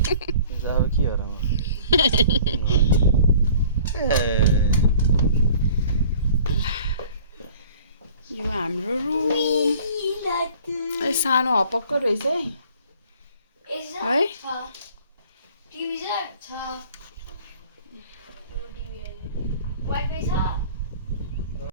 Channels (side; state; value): both; inverted; correlation -0.50